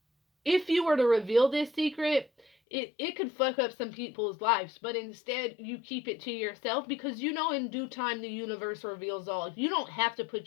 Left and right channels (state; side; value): drops out; right; at 2.5 s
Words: if you were to reveal this secret, it could fuck up some people's lives. But instead, you keep it to yourself, because in due time the universe reveals all. You don't have to